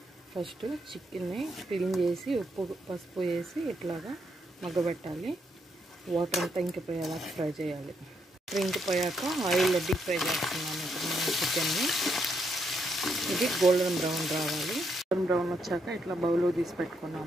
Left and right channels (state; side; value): normal; both; correlation 0.77